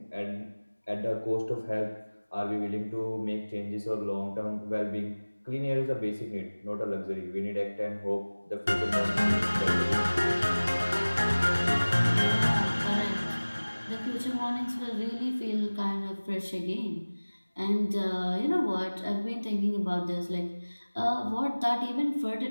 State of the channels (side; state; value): both; inverted; correlation -1.00